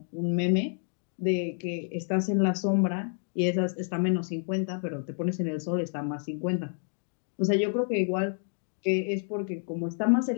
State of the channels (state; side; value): silent; right; 56 dB below the other